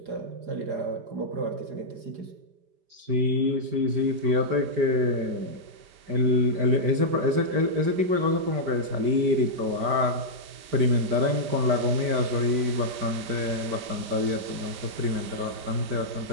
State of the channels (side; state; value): left; late; 5.0 ms